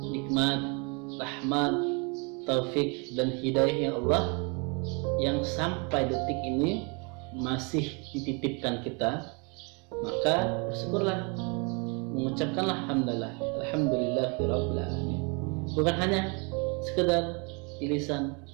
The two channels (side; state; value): left; quieter; 33.1 dB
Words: rahmat, taufik dan hidayahnya Allah yang sampai detik ini masih dititipkan kita. Maka bersyukurlah, mengucapkanlah alhamdulillahirabbil alamin. Bukan hanya sekedar di lisan,